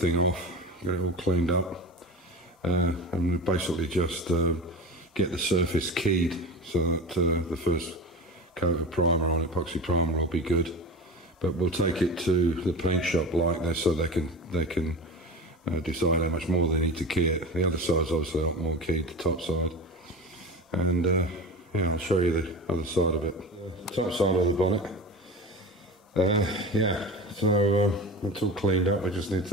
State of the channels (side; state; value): both; normal; correlation 0.30